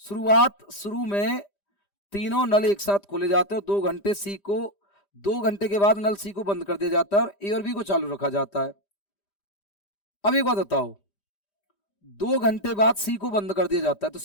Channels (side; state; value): right; late; 5.0 ms